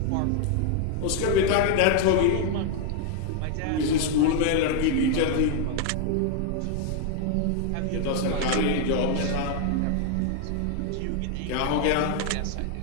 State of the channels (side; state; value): both; different; correlation 0.00